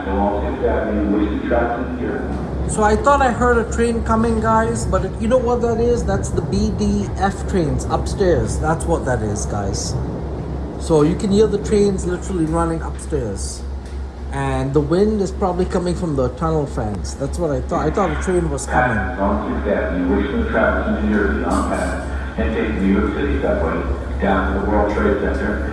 along 6th Avenue, wishing travels to New Jersey. So I thought I heard a train coming, guys, but you know what that is? That's the BDF trains upstairs. That's what that is, guys. So you can hear the trains literally running upstairs. And the wind is probably coming from the tunnel fans. That's what I thought. I thought a train was coming. Passes on 6th Avenue, wishing travels to New Jersey on path, and take the New York City subway down to the World Trade Center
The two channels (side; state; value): both; identical; correlation 1.00